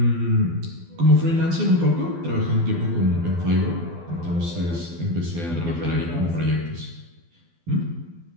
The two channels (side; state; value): left; late; 12 ms